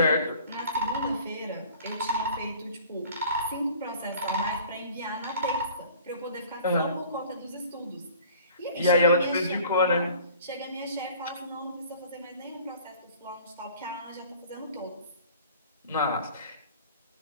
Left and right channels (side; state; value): both; inverted; correlation -0.48